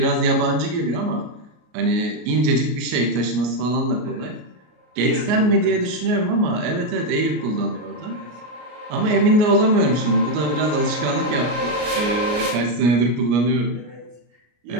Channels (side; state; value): left; late; 33 ms